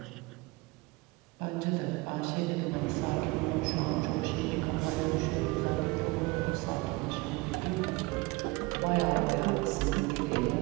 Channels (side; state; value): left; quieter; 23.7 dB